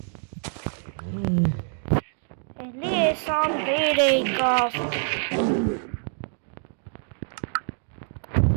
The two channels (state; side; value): silent; left; 57 dB below the other